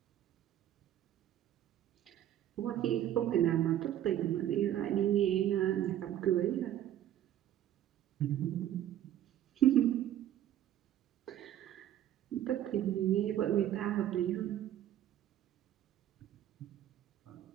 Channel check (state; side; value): quieter; left; 11.7 dB